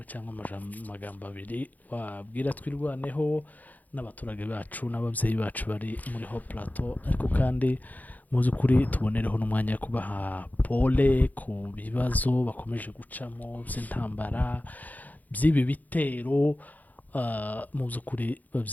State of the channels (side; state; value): right; late; 0.080 ms